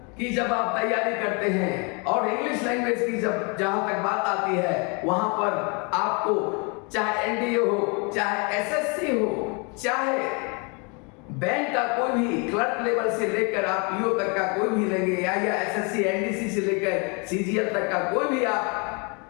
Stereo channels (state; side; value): quieter; right; 32.9 dB